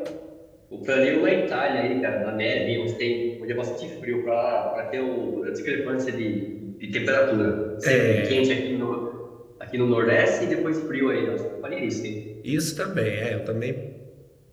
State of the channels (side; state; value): both; identical; correlation 1.00